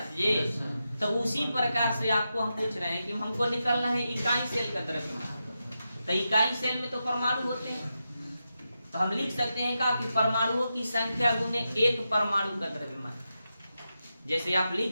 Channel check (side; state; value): both; inverted; correlation -0.88